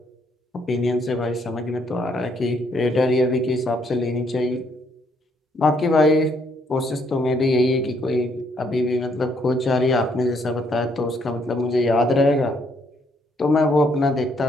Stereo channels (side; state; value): both; normal; correlation 0.70